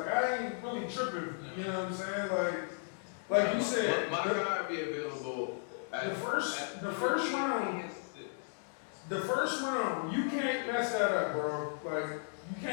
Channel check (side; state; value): right; silent; digital silence